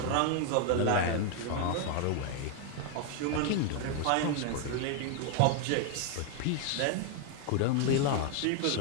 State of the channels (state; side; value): different; both; correlation 0.00